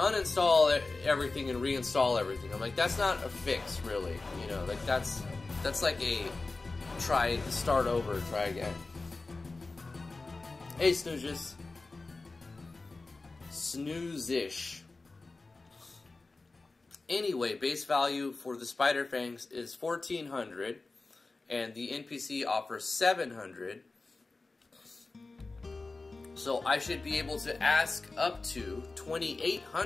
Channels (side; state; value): right; quieter; 3.6 dB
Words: everything and reinstall everything. I'm like, that's not a fix, really. You know, like that's like a start over, try again. Hey, Snoozes. Snoozish. Anyway, base value for the Spider Fangs is 1,400, and the NPC offers 700. So I should be able to ask up to